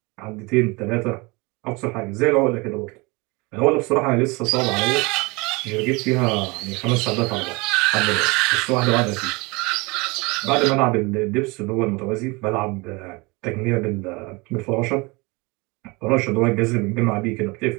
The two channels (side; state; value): left; quieter; 26.1 dB